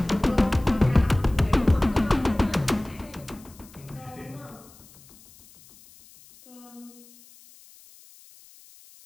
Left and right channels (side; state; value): left; noise; hiss, 24 dB below the sound